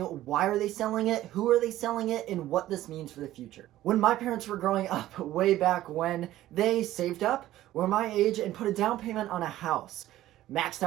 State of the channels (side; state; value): left; quieter; 14.4 dB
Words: are they selling it, who are they selling it, and what this means for the future. When my parents were growing up, way back when, they saved up, were my age, and put a down payment on a house, maxed